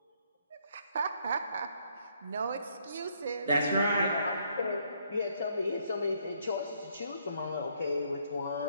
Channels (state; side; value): inverted; both; correlation -0.69